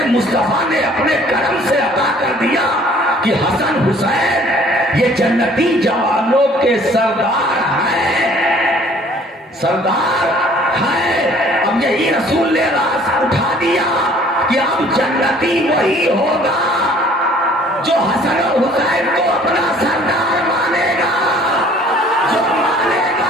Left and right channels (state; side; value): normal; both; correlation 0.55